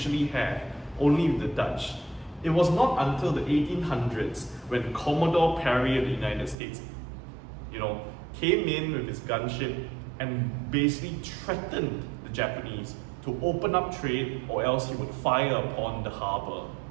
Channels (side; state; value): left; drops out; at 6.6 s